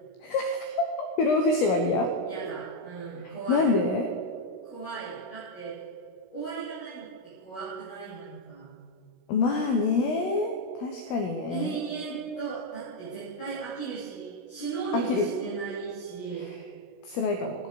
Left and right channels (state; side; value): late; right; 16 ms